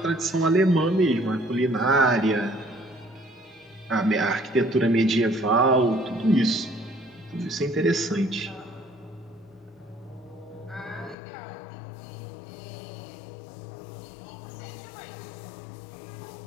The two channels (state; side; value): drops out; right; at 11.2 s